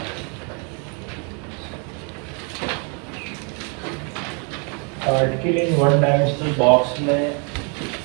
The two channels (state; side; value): quieter; left; 36.7 dB